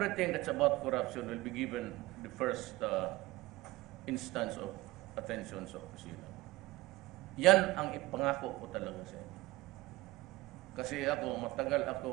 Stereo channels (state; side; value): quieter; left; 20.0 dB